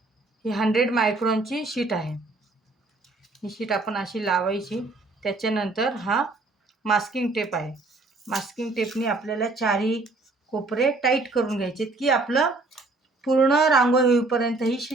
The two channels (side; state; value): left; quieter; 3.3 dB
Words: ही 100 मायक्रॉनची शीट आहे. ही शीट आपण अशी लावायची. त्याच्यानंतर हा मास्किंग टेप आहे. मास्किंग टेपने आपल्याला चारही कोपरे टाईट करून घ्यायचे की आपलं पूर्ण रांगोळी होईपर्यंत ही